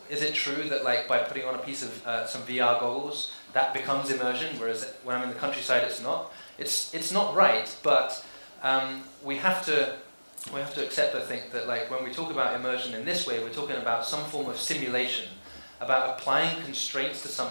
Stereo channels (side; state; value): both; inverted; correlation -1.00